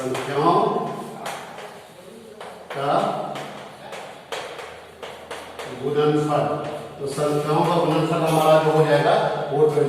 का गुणनफल। तो संख्याओं का गुणनफल हमारा जो हो जाएगा वो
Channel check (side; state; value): both; identical; correlation 1.00